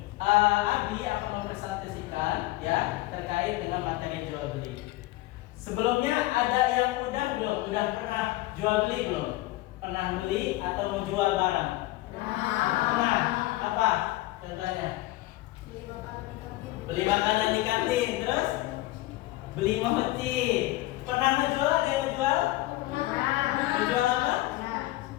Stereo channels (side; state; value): right; quieter; 18.2 dB